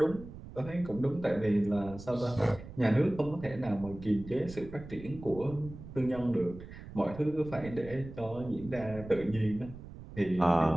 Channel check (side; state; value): right; noise; rumble, 14 dB below the sound